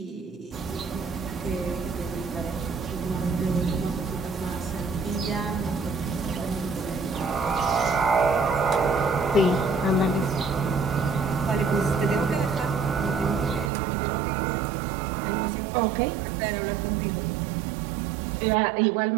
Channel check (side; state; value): left; drops out; at 13.7 s